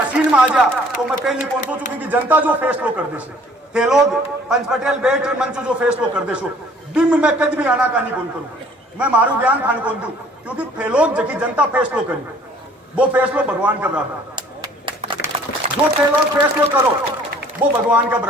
में आ जा, तो मैं पहले कौन सोचू क्योंकि जनता जो फैसलो कर दे थे लोग पंच पटेल बेट मंच जो फैसलो कर दे बिम में कद भी आना का नहीं कौन करूं, मैं मारू ज्ञान खान कौन दू क्योंकि थे लोग जबकि जनता फैसलो करी वो फैसलो भगवान का बराबर, जो थे लोग फैसलो करो वो भगवान का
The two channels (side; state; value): both; normal; correlation 0.55